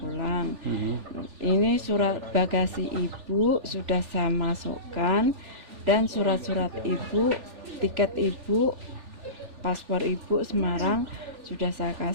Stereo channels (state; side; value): late; left; 3.4 ms